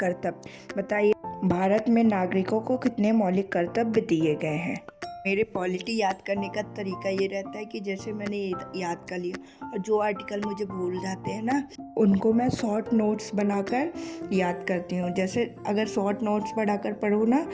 बताइए भारत में नागरिकों को कितने मौलिक कर्तव्य दिए गए हैं। मेरे पॉलिटी याद करने का तरीका ये रहता है कि जैसे मैंने याद कर लिया और जो आर्टिकल मुझे भूल जाते हैं ना, उनको मैं शॉर्ट नोट्स बनाकर याद करती हूँ। जैसे अगर शॉर्ट नोट्स बनाकर पढ़ूँ ना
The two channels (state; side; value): identical; both; correlation 1.00